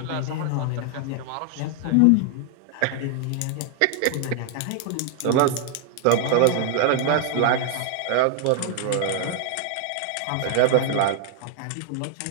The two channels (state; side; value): different; both; correlation 0.00